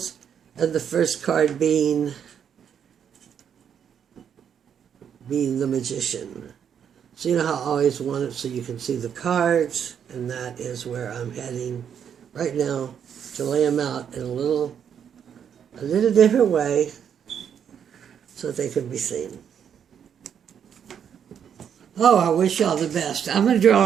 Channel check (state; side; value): quieter; left; 8.2 dB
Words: and the first card being the magician. So you know how I always want it so you can see the cards, and that is where I'm heading right now to lay them out in a little different way so that they can be seen. Oh, I wish y'all the best. I'm going to